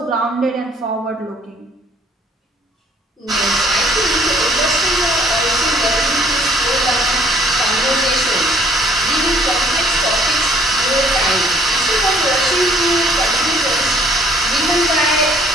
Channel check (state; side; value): normal; both; correlation 0.60